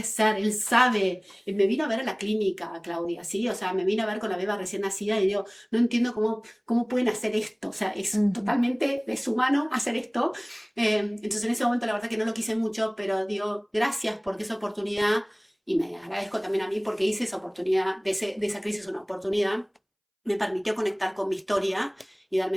ser? Él sabe, me vino a ver a la clínica, Claudia, ¿sí? O sea, me vino a ver con la beba recién nacida y digo, no entiendo cómo pueden hacer esto, o sea, es Ujú. totalmente deshumano hacer esto. Entonces en ese momento la verdad que no lo quise mucho, pero digo, gracias porque esa oportunidad, y me agradezco también a mí porque hice esa oportunidad, de esa crisis una oportunidad, me permitió conectar con mi historia y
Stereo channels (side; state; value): both; identical; correlation 1.00